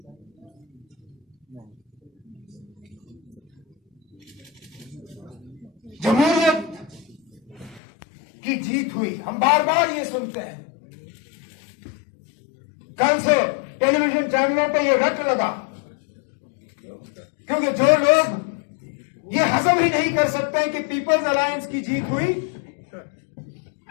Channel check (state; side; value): drops out; right; at 7.8 s